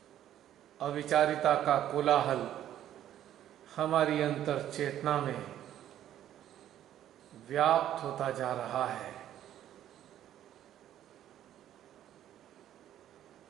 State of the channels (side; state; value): left; quieter; 11.6 dB